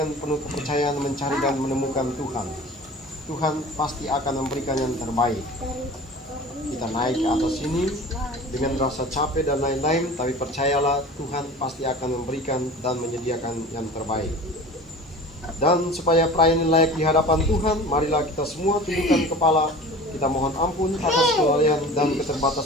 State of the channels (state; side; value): normal; both; correlation 0.39